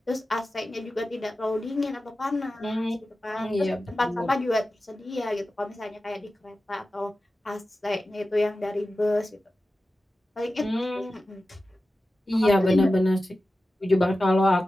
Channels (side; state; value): both; normal; correlation 0.94